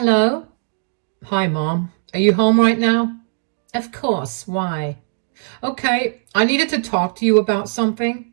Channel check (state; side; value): silent; left; digital silence